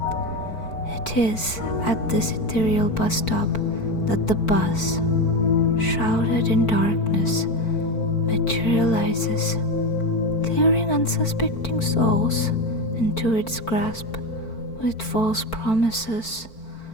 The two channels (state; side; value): late; right; 4.5 ms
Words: It is at this ethereal bus stop that the bus, shrouded in darkness, materializes, luring unsuspecting souls into its grasp with false promises